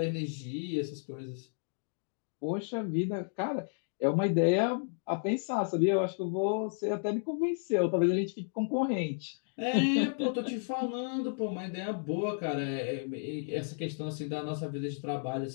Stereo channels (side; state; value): right; silent; digital silence